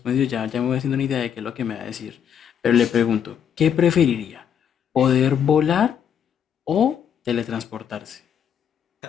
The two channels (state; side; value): quieter; right; 8.4 dB